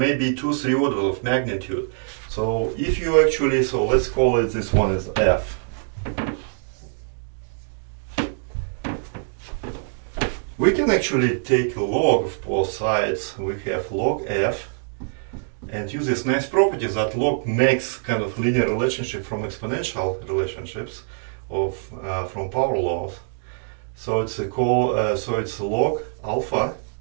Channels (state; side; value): silent; left; digital silence